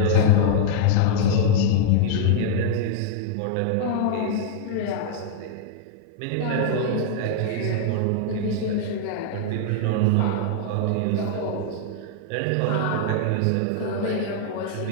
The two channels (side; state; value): both; different; correlation -0.01